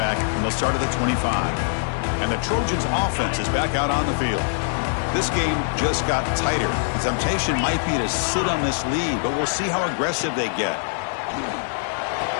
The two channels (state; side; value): silent; right; digital silence